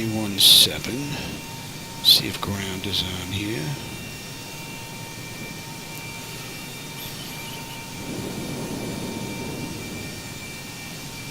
See if ground is on here.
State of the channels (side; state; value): both; identical; correlation 1.00